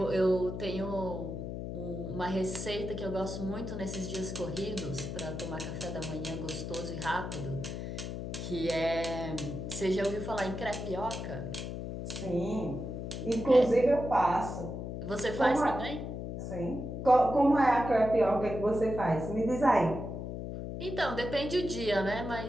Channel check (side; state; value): left; noise; hum, 6 dB below the sound